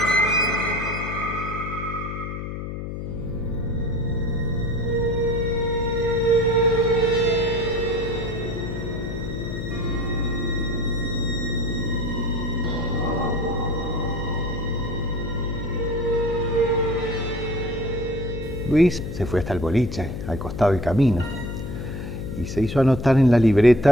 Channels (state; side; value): noise; left; hum, 6 dB below the sound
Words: Luis se fue hasta el boliche, al costado del camino, y se hizo anotar en la